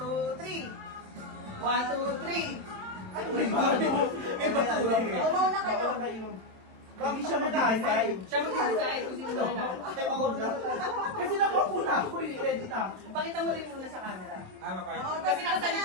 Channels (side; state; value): left; late; 27 ms